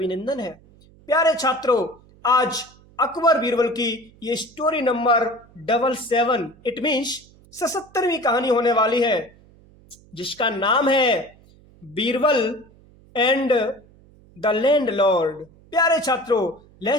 है। प्यारे छात्रों, आज अकबर बीरबल की ये स्टोरी नंबर 77 इट मीन्स 77वीं कहानी होने वाली है, जिसका नाम है बीरबल एंड द लैंडलॉर्ड। प्यारे छात्रों,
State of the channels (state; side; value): noise; right; hum, 27 dB below the sound